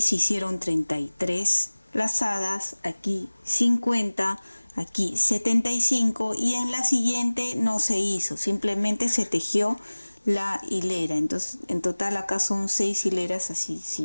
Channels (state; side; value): inverted; both; correlation -1.00